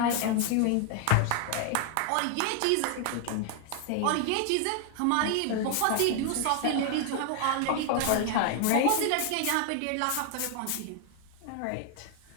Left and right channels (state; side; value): different; both; correlation 0.00